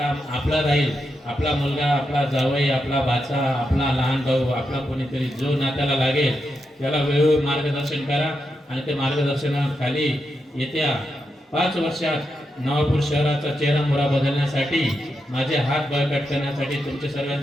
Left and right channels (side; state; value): both; normal; correlation 0.85